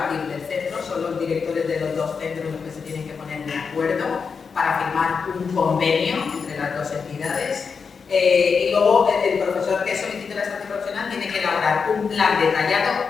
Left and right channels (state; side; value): quieter; right; 5.6 dB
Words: del centro, son los directores de los 2 centros los que se tienen que poner de acuerdo para firmar un convenio entre las 2 entidades. Y luego el profesor que solicite la estancia profesional tiene que elaborar un plan